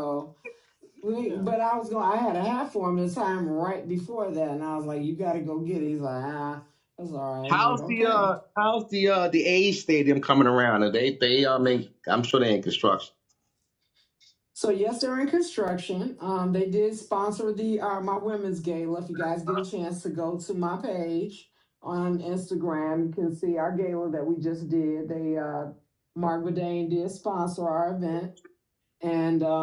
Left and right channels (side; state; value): both; identical; correlation 1.00